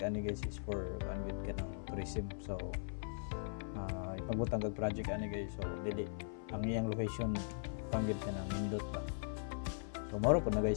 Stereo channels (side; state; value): right; silent; 51 dB below the other